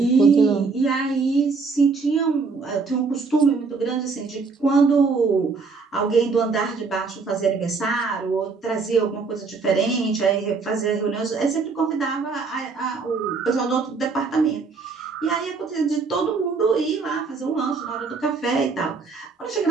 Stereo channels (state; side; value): quieter; left; 4.6 dB